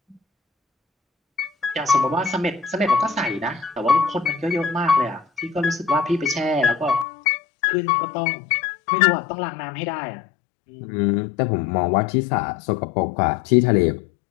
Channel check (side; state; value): right; drops out; at 7.1 s